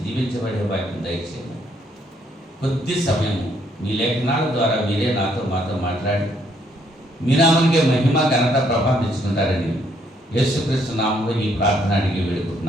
దీవించబడే వాక్యం దయచేయండి. కొద్ది సమయము మీ లేఖనాల ద్వారా మీరే మాతో మాట్లాడి మీ నామానికే మహిమ, ఘనత, ప్రభావం తెచ్చుకుంటారని యేసుక్రీస్తు నామంలో ఈ ప్రార్థన అడిగి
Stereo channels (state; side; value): normal; both; correlation 0.69